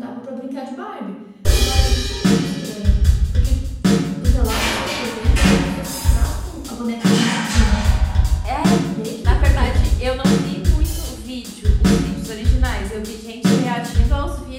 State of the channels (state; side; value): identical; both; correlation 1.00